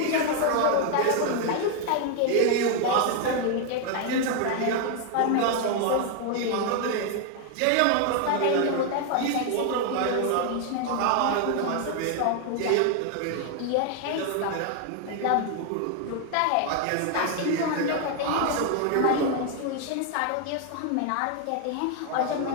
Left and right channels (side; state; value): both; different; correlation 0.00